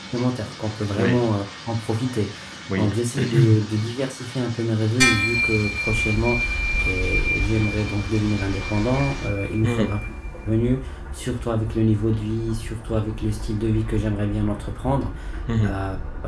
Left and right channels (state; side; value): identical; both; correlation 1.00